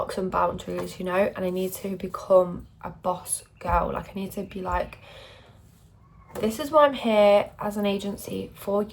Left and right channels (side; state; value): both; identical; correlation 1.00